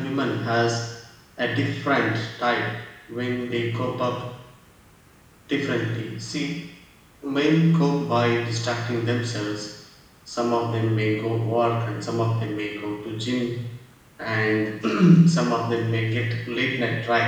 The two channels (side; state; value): both; identical; correlation 1.00